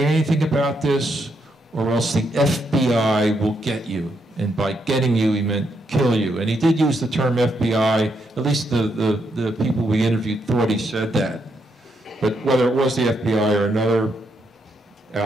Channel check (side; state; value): both; normal; correlation 0.78